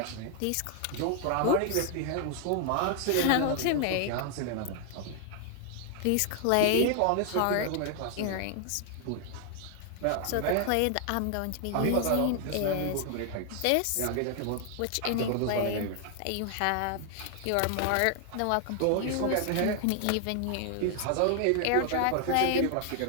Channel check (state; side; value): different; both; correlation 0.00